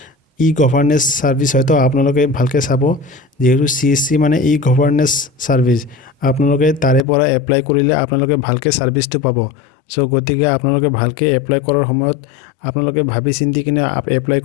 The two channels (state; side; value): drops out; right; at 7.1 s